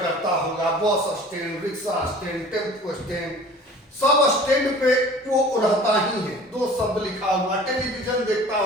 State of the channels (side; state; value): both; normal; correlation 0.45